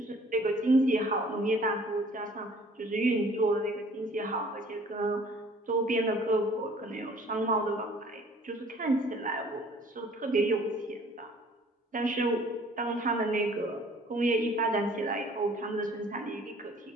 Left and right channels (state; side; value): normal; both; correlation 0.54